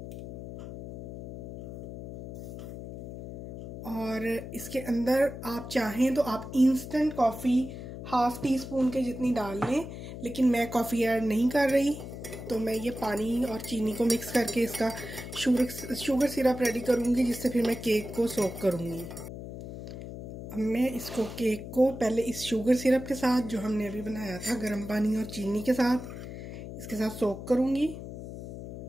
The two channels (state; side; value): noise; left; hum, 10 dB below the sound